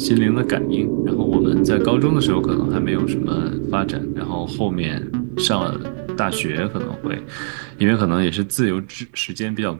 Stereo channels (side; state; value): left; silent; digital silence